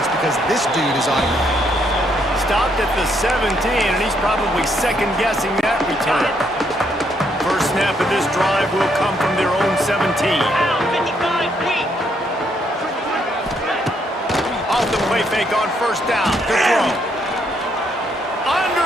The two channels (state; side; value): normal; both; correlation 0.73